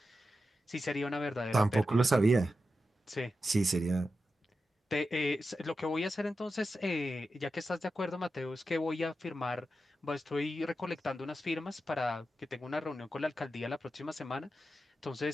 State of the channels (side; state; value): both; normal; correlation 0.90